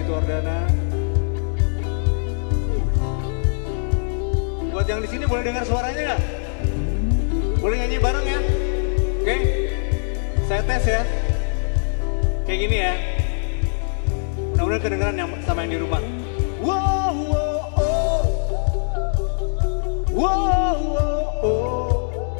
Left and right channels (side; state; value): right; silent; digital silence